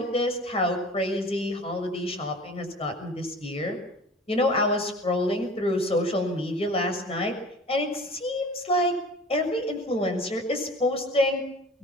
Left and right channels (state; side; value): normal; both; correlation 0.42